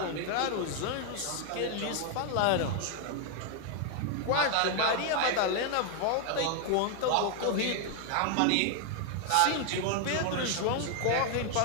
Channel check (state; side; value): different; both; correlation 0.00